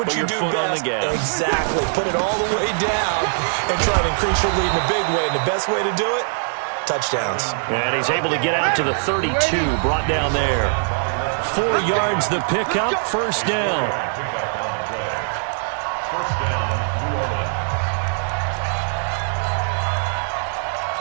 what you do best. Exactly. Put it all the way down and try to increase your lead in a big way. And the best way to do it, touchdowns. And he's able to get out to the 32, brought down there. 4 yards the pickup, 1st down.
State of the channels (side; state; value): left; silent; digital silence